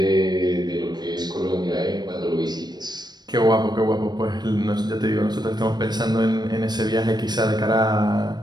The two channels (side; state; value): left; late; 0.20 ms